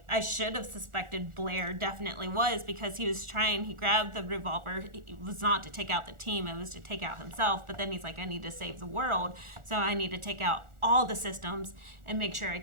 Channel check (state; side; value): late; left; 1.4 ms